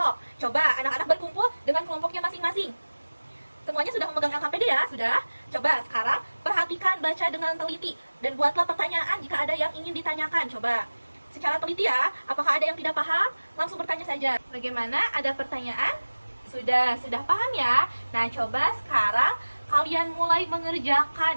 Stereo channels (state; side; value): inverted; both; correlation -1.00